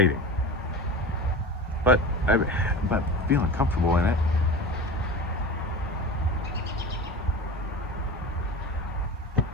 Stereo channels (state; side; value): normal; both; correlation 0.32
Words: But but feeling comfortable in it.